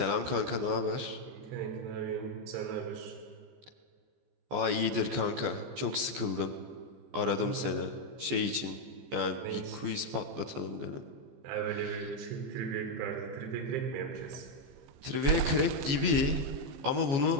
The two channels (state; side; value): late; left; 14 ms